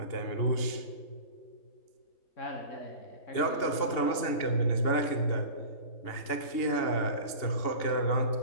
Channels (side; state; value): right; late; 2.8 ms